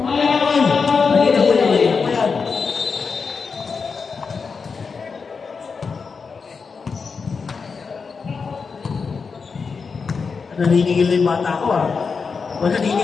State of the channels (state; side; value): quieter; right; 5.2 dB